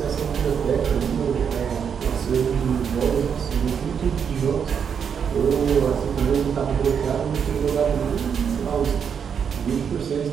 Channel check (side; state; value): left; quieter; 7.2 dB